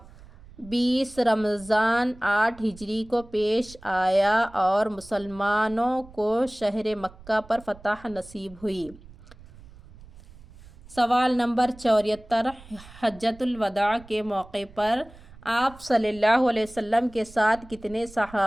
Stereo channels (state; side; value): noise; right; rumble, 21 dB below the sound